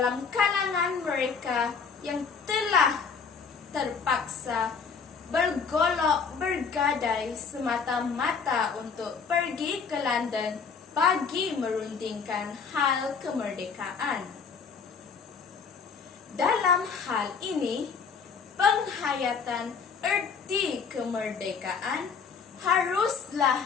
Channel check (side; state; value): right; quieter; 5.7 dB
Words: kalangan mereka yang telah terpaksa bergolok bergadai semata-mata untuk pergi ke London bagi merundingkan hal kemerdekaan. Dalam hal ini, penghayatan erti kemerdekaan